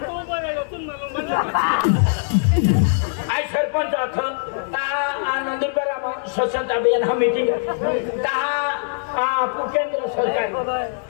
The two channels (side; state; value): right; silent; 64 dB below the other